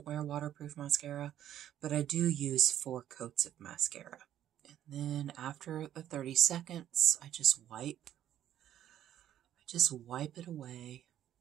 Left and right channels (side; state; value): left; quieter; 11.4 dB